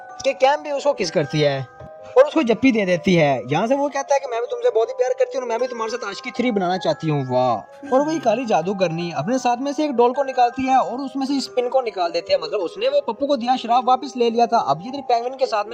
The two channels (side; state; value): both; identical; correlation 1.00